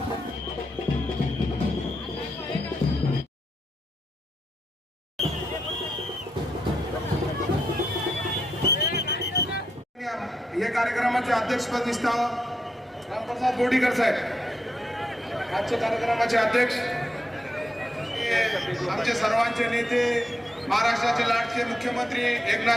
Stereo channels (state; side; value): normal; both; correlation 0.83